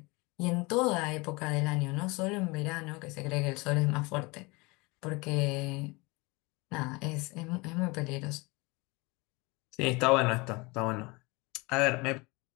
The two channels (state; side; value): quieter; right; 25.8 dB